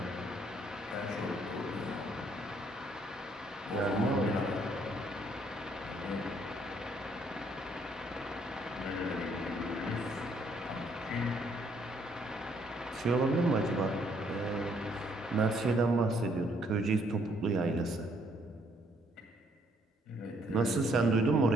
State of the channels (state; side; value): normal; both; correlation 0.68